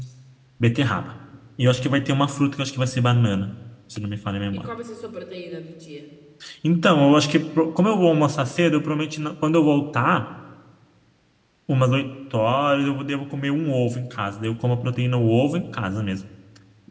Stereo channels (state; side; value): identical; both; correlation 1.00